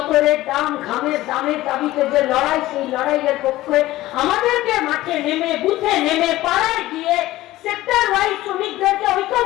দাম, ঘামের দামের দাবিতে যে লড়াই, সেই লড়াইয়ের পক্ষে আমাদেরকে মাঠে নেমে, বুথে নেমে, পাড়ায় গিয়ে সেক্টর ওয়াইজ শ্রমিকদেরকে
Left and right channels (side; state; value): right; quieter; 16.6 dB